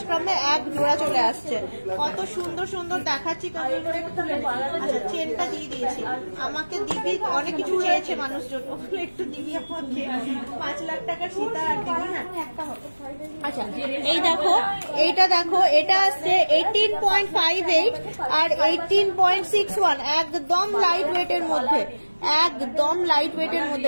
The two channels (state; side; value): inverted; both; correlation -1.00